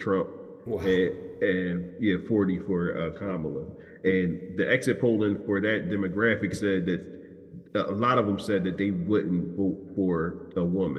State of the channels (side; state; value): both; identical; correlation 1.00